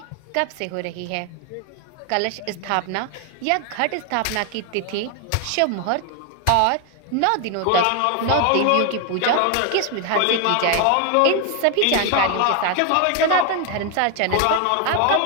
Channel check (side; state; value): both; different; correlation 0.01